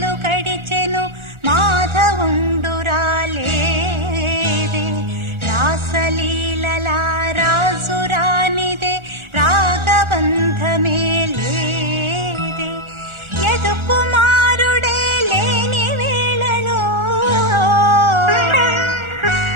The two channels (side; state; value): left; late; 1.4 ms